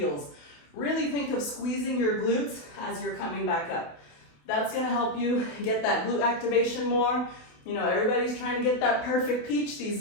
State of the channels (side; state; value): right; late; 28 ms